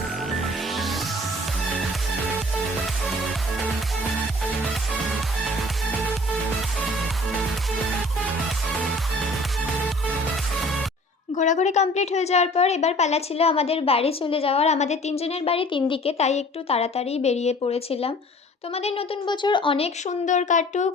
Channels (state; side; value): normal; both; correlation 0.50